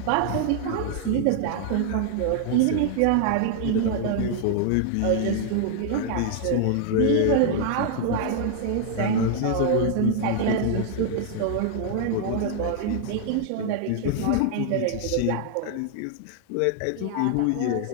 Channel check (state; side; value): different; both; correlation 0.00